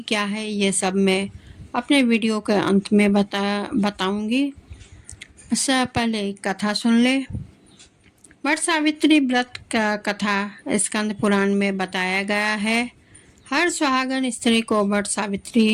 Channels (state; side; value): identical; both; correlation 1.00